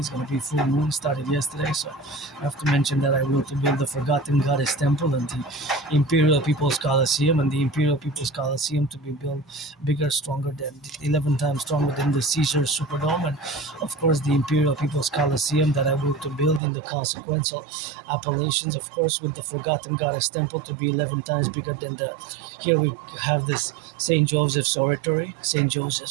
going to be full moon, started yesterday. So I have to mention that I will to build the Forgotten Goddess Temple and the Imperial People's Coliseum, and the Imperial People's Coliseum to be built bigger, stronger than 11 times stronger than the Caesar Superdome, and of course the Imperial People's Coliseum that I will to build in the consequential appellations, of course, with the Forgotten Goddess Temple to be 11 times bigger than here we have this St. Joseph's Oratory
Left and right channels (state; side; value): drops out; left; at 16.6 s